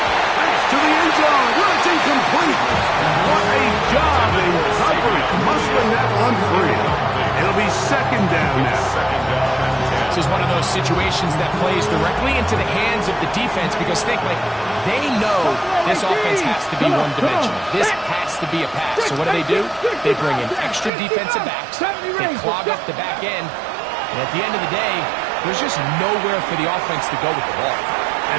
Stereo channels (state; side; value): drops out; left; at 20.9 s